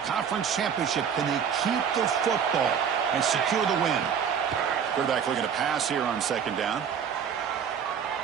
championship. Can they keep the football and secure the win? Quarterback looking to pass here on 2nd down.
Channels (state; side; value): quieter; left; 7.5 dB